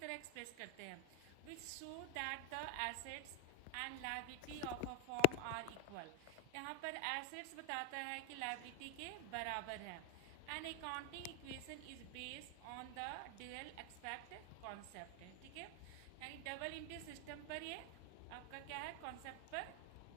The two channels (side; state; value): both; different; correlation 0.01